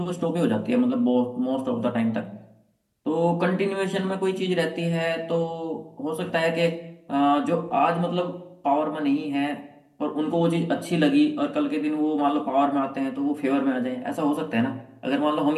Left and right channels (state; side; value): identical; both; correlation 1.00